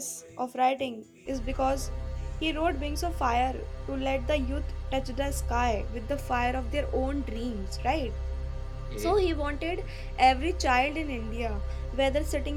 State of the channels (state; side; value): identical; both; correlation 1.00